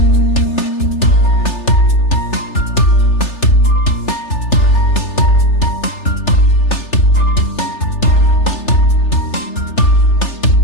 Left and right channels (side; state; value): right; late; 3.3 ms